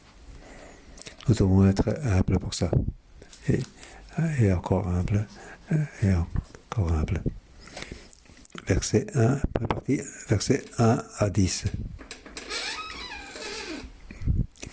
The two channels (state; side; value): identical; both; correlation 1.00